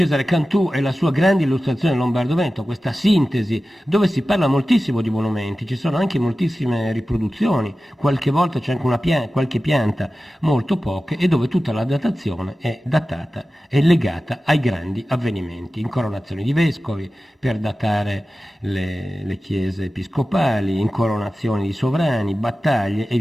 Cantù e la sua grande illustrazione del Lombardo-Veneto, questa sintesi dove si parla moltissimo di monumenti, ci sono anche moltissime riproduzioni, qualche volta c'è anche qualche pianta, molto poche, e dove tutta la datazione è datata e legata ai grandi avvenimenti, incoronazioni di vescovi per datare le chiese episcopali, incoronazioni di sovrani, battaglie e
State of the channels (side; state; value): both; normal; correlation 0.95